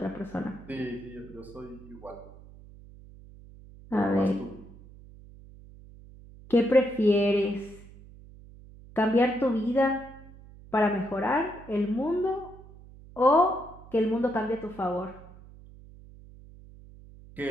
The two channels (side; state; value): right; noise; hum, 20 dB below the sound